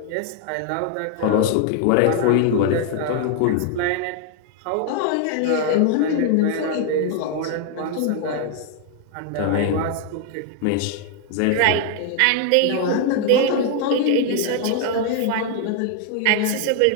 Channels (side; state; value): both; different; correlation 0.00